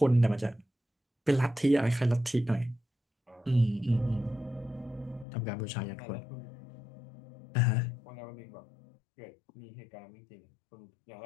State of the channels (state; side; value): drops out; right; at 5.2 s